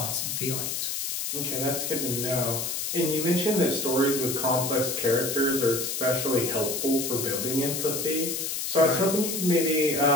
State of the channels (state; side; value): noise; left; hiss, 2 dB below the sound